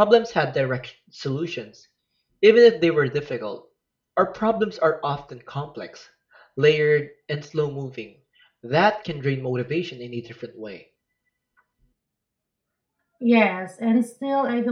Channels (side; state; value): both; identical; correlation 1.00